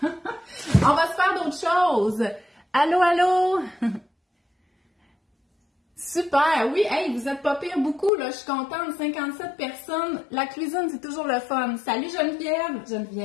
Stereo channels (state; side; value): drops out; right; at 8.1 s